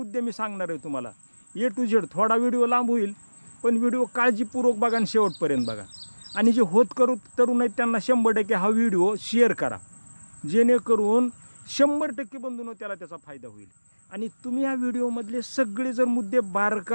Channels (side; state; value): both; inverted; correlation -1.00